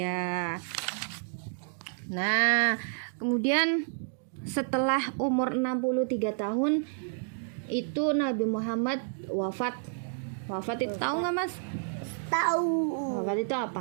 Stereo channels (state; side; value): silent; left; digital silence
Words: Nah, kemudian setelah umur 63 tahun itu Nabi Muhammad wafat. Wafat itu tahu nggak Mas? Tahu. Wafat itu